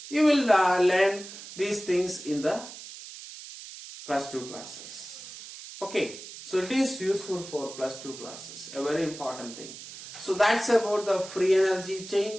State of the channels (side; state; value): right; noise; hiss, 13 dB below the sound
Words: You will learn these things in the plus 2 classes. Okay, so it is useful for plus 2 classes. A very important thing. So that's about the free energy